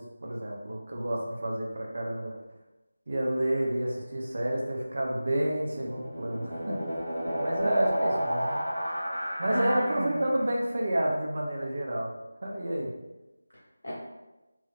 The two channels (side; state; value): both; inverted; correlation -0.96